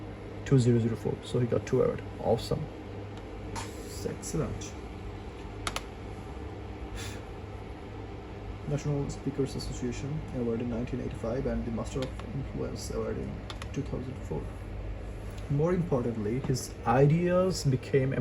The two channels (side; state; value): both; identical; correlation 1.00